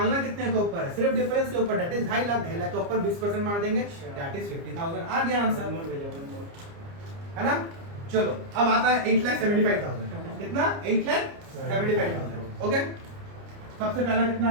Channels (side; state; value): left; late; 29 ms